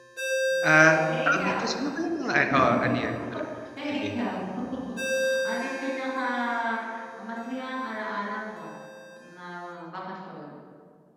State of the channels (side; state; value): both; identical; correlation 1.00